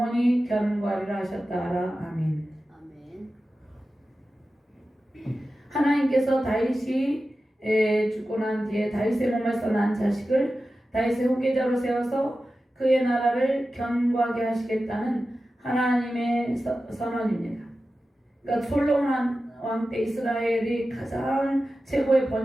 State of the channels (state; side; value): normal; both; correlation 0.93